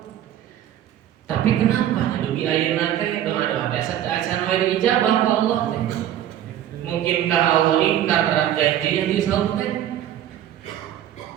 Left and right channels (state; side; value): quieter; left; 11.4 dB